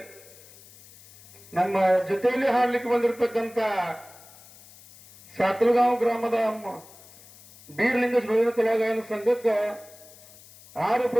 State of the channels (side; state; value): left; noise; hiss, 22 dB below the sound